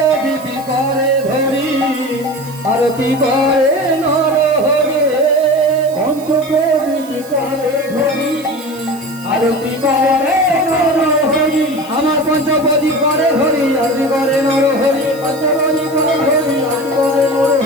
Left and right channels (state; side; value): noise; right; hiss, 20 dB below the sound